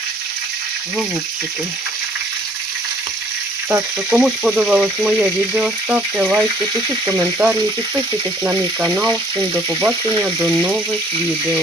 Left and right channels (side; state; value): both; normal; correlation 0.59